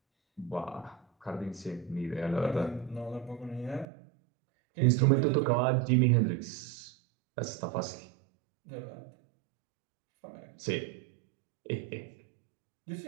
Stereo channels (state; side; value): drops out; left; at 3.9 s